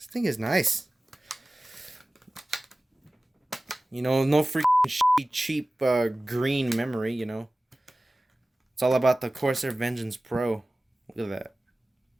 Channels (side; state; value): both; normal; correlation 0.97